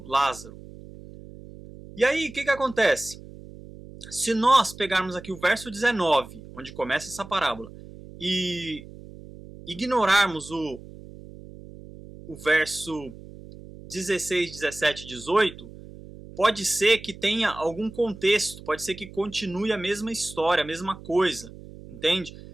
Lázaro. E aí o que acontece? Se nós pegarmos aqui o verso 19, onde começa essa parábola, e ignorarmos o verso 16, 17 e 18, pode ser que tenha algum contexto, pode ser que continue a mesma história, a mesma coisa, entende?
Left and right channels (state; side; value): noise; right; hum, 17 dB below the sound